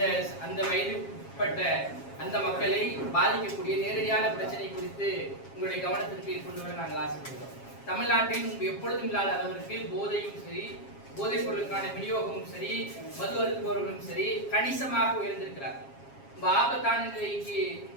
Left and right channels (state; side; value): late; right; 7.4 ms